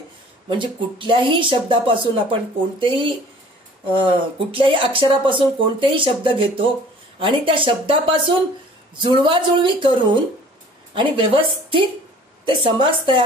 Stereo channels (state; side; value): normal; both; correlation 0.50